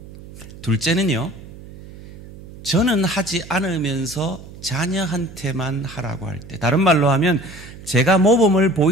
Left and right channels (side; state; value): right; noise; hum, 17 dB below the sound